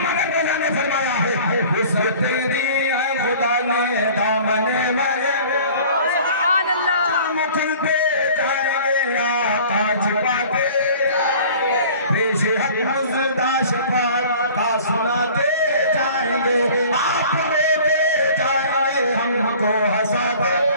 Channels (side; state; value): both; inverted; correlation -0.46